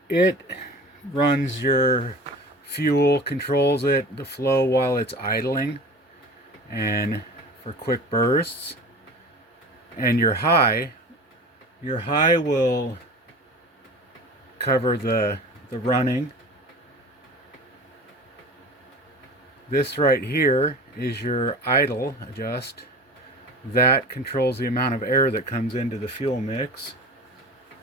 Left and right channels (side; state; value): both; normal; correlation 0.36